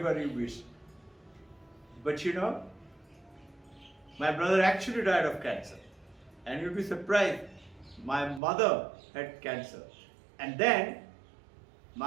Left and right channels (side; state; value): left; drops out; at 8.4 s